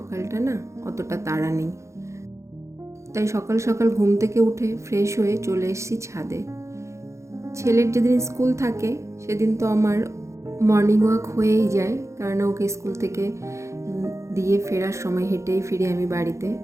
না অতটা তাড়া নেই। তাই সকাল সকাল ঘুম থেকে উঠে ফ্রেশ হয়ে চলে এসেছি ছাদে। ছেলের যেদিন স্কুল থাকে সেদিন তো আমার মর্নিং ওয়াক হয়েই যায়, কারণ ওকে স্কুল থেকে দিয়ে ফেরার সময় হেঁটেই ফিরি আমি বাড়িতে।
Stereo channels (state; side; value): late; left; 0.14 ms